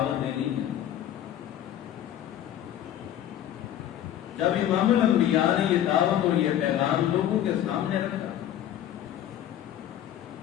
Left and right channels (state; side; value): quieter; right; 11.4 dB